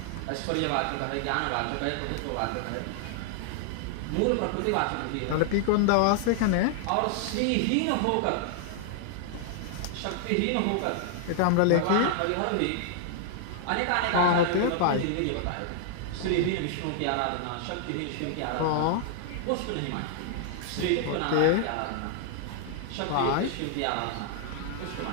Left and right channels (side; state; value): both; different; correlation 0.00